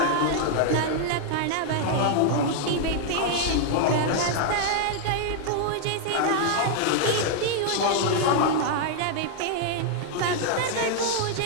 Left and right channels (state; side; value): different; both; correlation 0.00